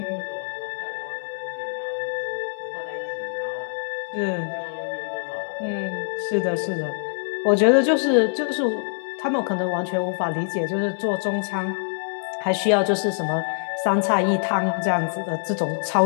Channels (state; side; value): silent; right; digital silence